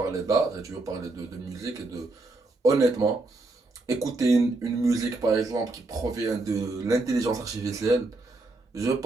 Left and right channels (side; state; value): left; quieter; 3.2 dB